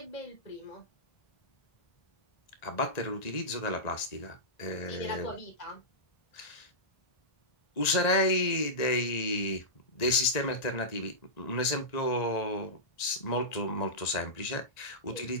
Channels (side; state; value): right; late; 1.9 ms